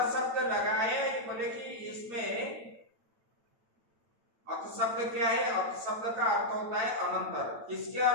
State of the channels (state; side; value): late; left; 8.9 ms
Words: शब्द लगाए, बोले कि इसमें अथ शब्द क्या है? अथ शब्द का अर्थ होता है अनंतर। किसके